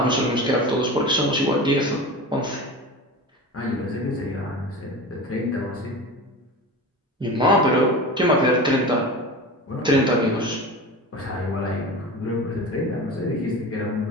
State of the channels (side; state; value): both; normal; correlation 0.31